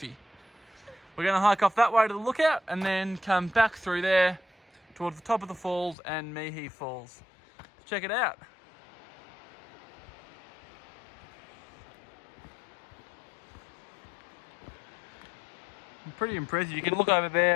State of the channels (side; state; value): right; drops out; at 6.0 s